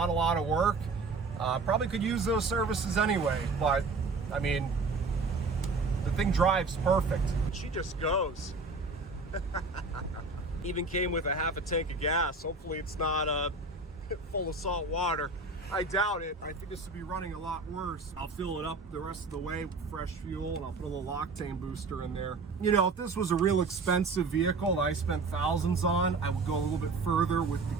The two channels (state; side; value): quieter; left; 3.8 dB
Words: a lot of work. Probably could use those services anyway, but I mean, the thing drives perfect. She just goes. Even came with a half a tank of gas. Hopefully it's not full of salt water. I doubt it. I think this would be running a lot worse. I'll fill it up the rest of the way with fresh fuel, and I'll put a little octane booster in there. You know, if this was a real expensive vehicle that I spent thousands on, I would go a little bit further with the